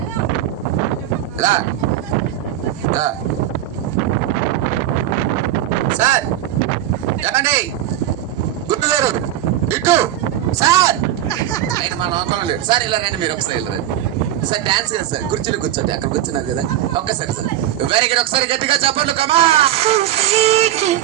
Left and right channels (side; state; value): left; quieter; 12.2 dB